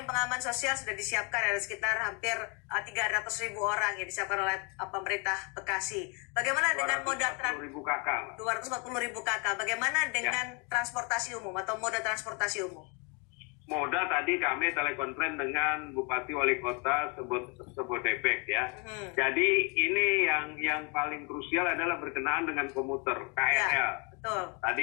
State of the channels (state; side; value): quieter; right; 33.2 dB